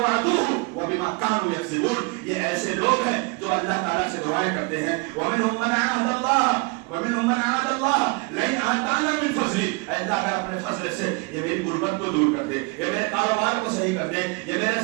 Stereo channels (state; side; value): quieter; left; 28.0 dB